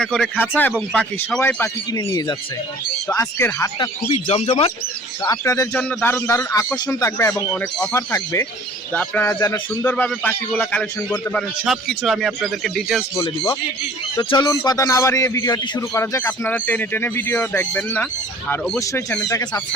করে খাঁচা এবং পাখি, সবাই পাখি কিনে নিয়ে যাচ্ছে। তো আজকের হাটটা খুবই জমজমাট। তো আপনাদের জন্য দারুণ দারুণ আকর্ষণ থাকবে এবং অনেক অফার থাকবে। তো আপনারা যেন সুন্দরভাবে পাখিগুলো কালেকশন করতে পারেন, সব কিছু আমি আপনাদেরকে ডিটেলস বলে দিব। তো চলুন কথা না বাড়িয়ে ভিডিওটি শুরু করা যাক। আপনারা টেনে টেনে ভিডিও দেখবেন না, আর অবশ্যই চ্যানেলটাকে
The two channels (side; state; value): both; normal; correlation 0.49